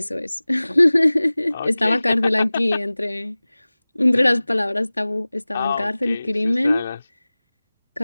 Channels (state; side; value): inverted; both; correlation -0.99